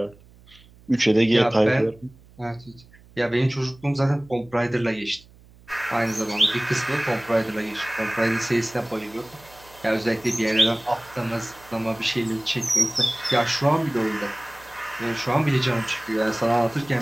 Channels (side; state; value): right; noise; hum, 25 dB below the sound